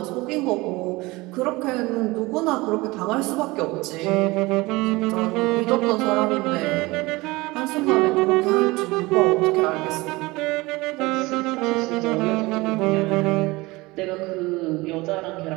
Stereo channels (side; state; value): left; quieter; 22.0 dB